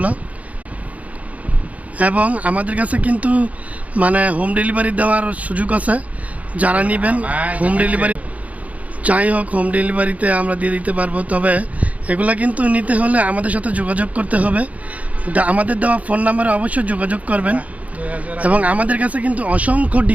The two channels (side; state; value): left; late; 0.069 ms